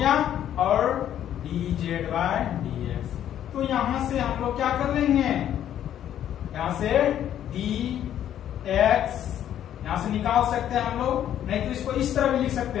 और D z by d x. तो यहां से हम लोग क्या कर लेंगे, यहां से डी एक्स यहां से निकाल सकते हैं हम लोग, नहीं तो इसको इस तरह भी लिख सकते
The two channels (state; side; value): quieter; right; 10.8 dB